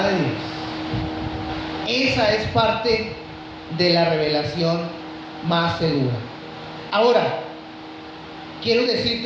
de Dios. Esa es parte de la revelación más segura. Ahora, quiero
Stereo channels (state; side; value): identical; both; correlation 1.00